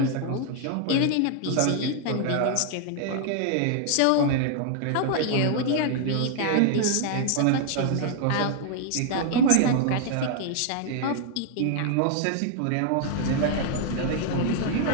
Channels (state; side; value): different; both; correlation 0.00